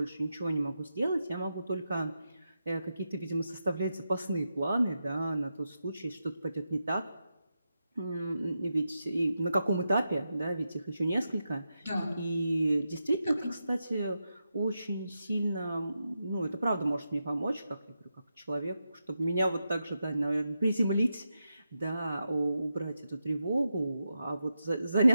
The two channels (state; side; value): inverted; both; correlation -0.88